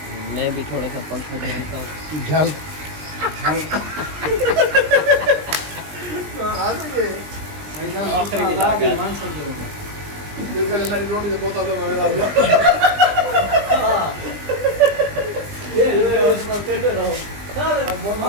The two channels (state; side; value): late; left; 20 ms